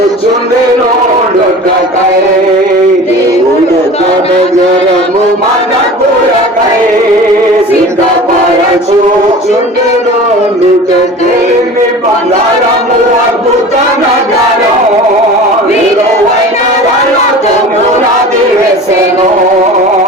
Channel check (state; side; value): normal; both; correlation 0.38